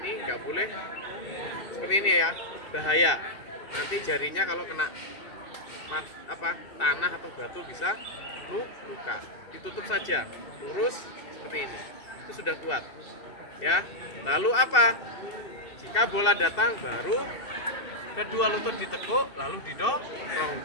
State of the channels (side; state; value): right; late; 2.7 ms